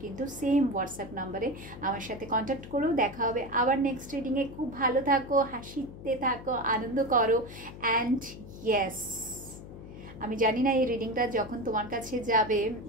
কিন্তু সেম হোয়াটসঅ্যাপ নাম্বারে আমার সাথে কন্ট্যাক্ট করো। দেখা হবে আবার নেক্সট রিডিংয়ে। খুব ভালো থাকো, হাসিতে থাকো, আনন্দ করো, অ্যান্ড ইয়েস, আমি জানি না এই রিডিংটা যখন তোমার কাছে যাবে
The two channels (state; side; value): noise; left; hum, 14 dB below the sound